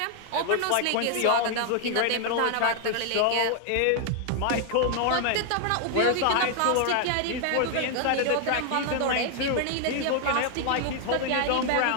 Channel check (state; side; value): different; both; correlation 0.00